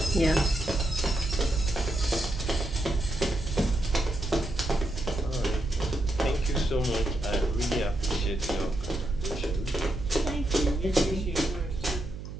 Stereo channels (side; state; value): right; noise; hum, 10 dB below the sound